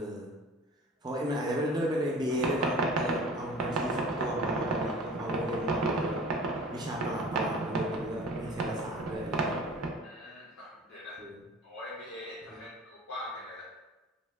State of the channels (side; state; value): both; normal; correlation 0.42